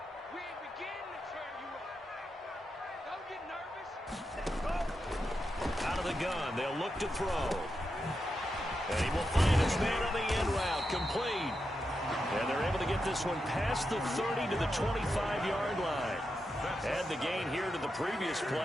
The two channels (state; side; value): normal; both; correlation 0.87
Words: Out of the gun, they'll look to throw. And he will find his man on the end route, complete. And they're able to get this one past the 30 to the 25-yard line. Add the gain here to the previous